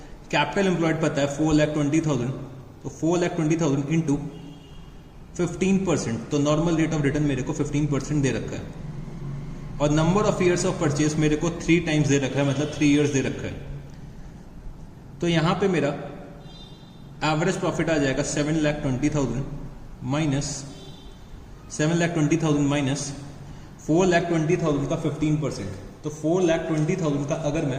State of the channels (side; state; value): both; identical; correlation 1.00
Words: कैपिटल एम्प्लॉयड पता है 4,20,000, तो 4,20,000 इंटू 15%, तो नॉर्मल रेट ऑफ रिटर्न मेरे को 15% दे रखा है। और number of years of purchase मेरे को 3 टाइम्स दे रखा है, मतलब 3 ईयर्स दे रखा है। तो यहां पे मेरा एवरेज प्रॉफिट आ जाएगा 7,20,000 माइनस 7,20,000 माइनस 4,20,000 का 15%। तो 4,20,000 का अगर